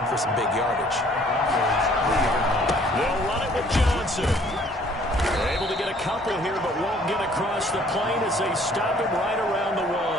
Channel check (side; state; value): both; normal; correlation 0.58